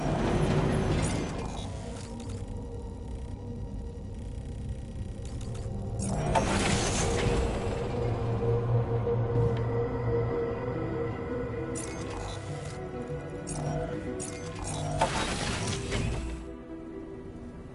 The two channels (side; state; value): both; identical; correlation 1.00